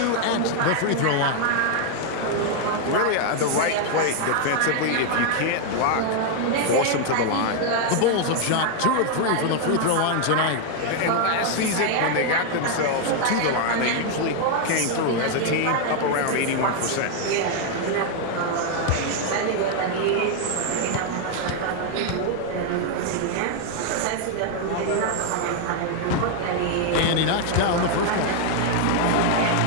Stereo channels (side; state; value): both; different; correlation 0.00